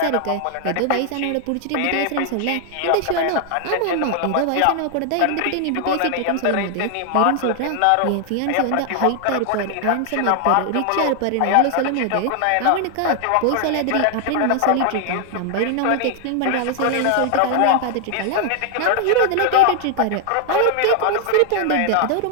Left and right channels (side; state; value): both; different; correlation 0.00